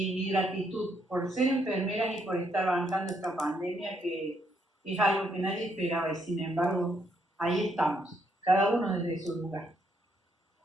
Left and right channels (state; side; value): normal; both; correlation 0.74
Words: mi gratitud por ser enfermeras y por estar bancando esta pandemia que es algo que nadie esperaba y sin embargo ahí estamos, cada uno desde su lugar.